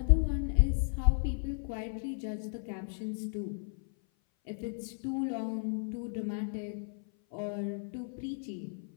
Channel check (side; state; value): right; silent; 55 dB below the other